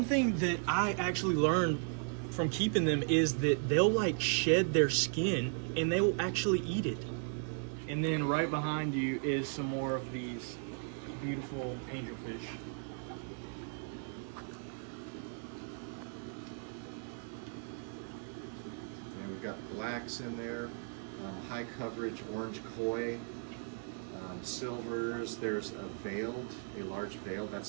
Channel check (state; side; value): silent; left; 54 dB below the other